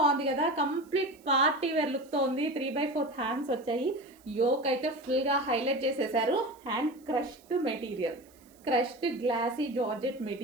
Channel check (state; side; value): noise; right; hiss, 29 dB below the sound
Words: కదా. కంప్లీట్ పార్టీ వేర్ లుక్ తో ఉంది. 3/4 హ్యాండ్స్ వచ్చాయి. యోక్ అయితే ఫుల్ గా హైలైట్ చేసేసారు. Hand crushed material, crushed glossy georgette